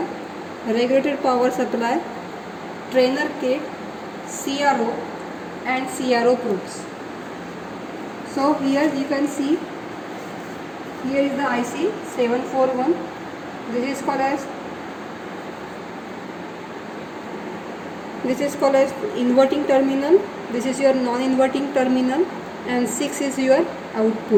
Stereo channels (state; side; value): identical; both; correlation 1.00